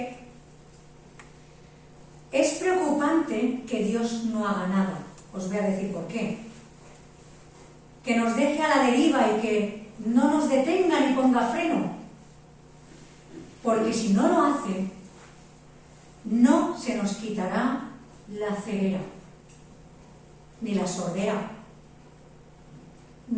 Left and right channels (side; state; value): both; identical; correlation 1.00